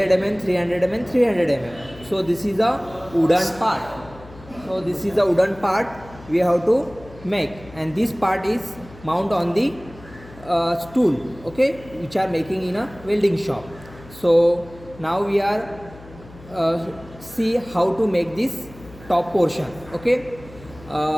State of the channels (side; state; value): left; noise; hum, 20 dB below the sound